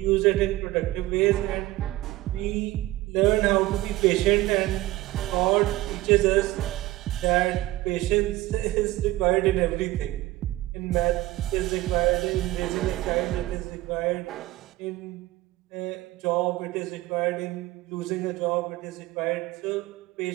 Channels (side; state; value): left; quieter; 17.5 dB